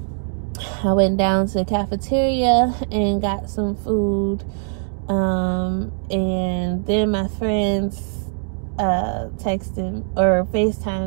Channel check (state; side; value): silent; left; digital silence